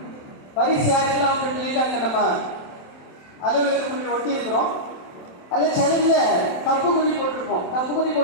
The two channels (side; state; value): right; late; 27 ms